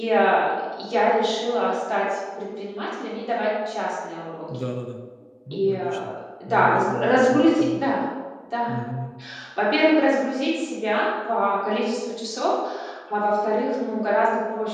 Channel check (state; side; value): identical; both; correlation 1.00